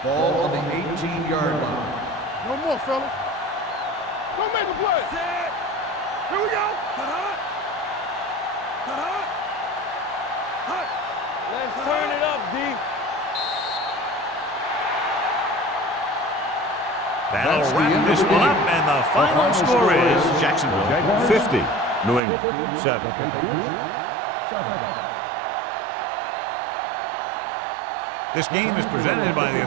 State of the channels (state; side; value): drops out; left; at 22.2 s